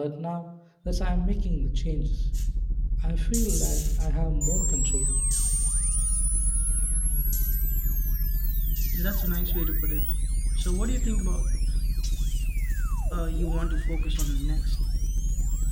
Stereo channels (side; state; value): both; identical; correlation 1.00